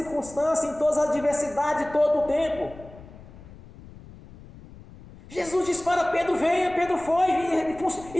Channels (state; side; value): noise; left; rumble, 19 dB below the sound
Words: em todas as adversidades, todo o tempo. Jesus disse para Pedro: venha, Pedro foi,